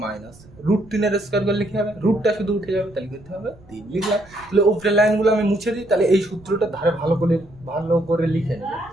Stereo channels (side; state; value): right; noise; rumble, 24 dB below the sound